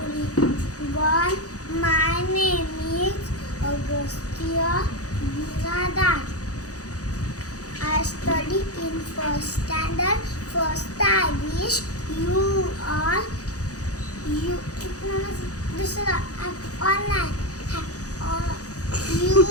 My name is Augustia Biradat. I study in first standard. First, I wish you all online. You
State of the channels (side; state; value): right; late; 0.67 ms